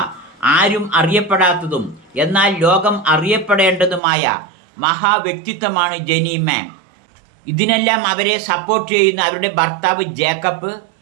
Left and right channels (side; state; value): left; drops out; at 4.0 s